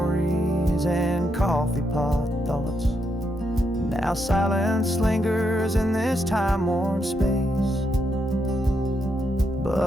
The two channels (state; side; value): normal; both; correlation 0.80